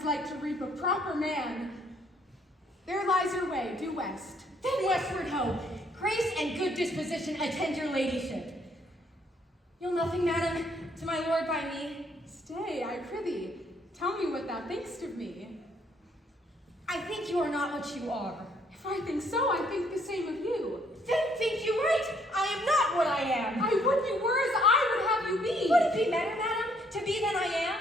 like to reap a proper man. There lies your way, due west. Then westward ho! Grace and good disposition attend your ladyship. Nothing, madam, to my lord by me. Stay, I prithee. Tell me what thou thinkst of me. I think you are not what you are. If I think so, I think the same of you. Then think you right. I am not what I am. I would you were as I would have you be. Would it be better, madam, to be than I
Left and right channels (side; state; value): both; normal; correlation 0.67